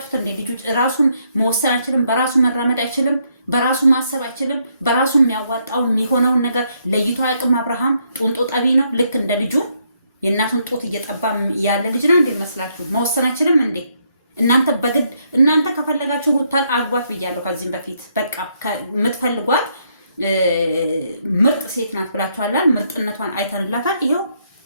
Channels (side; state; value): both; inverted; correlation -0.74